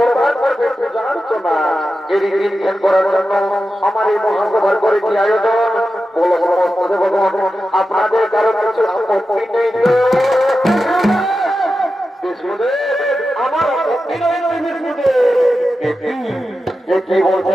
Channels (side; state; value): both; normal; correlation 0.91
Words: আমার এই মহাসভার করেছি আয়োজন। বলো সমস্ত দেবগণ, আপনাদের কারো কিছু আপত্তি নেই? আমার আপত্তি নেই কি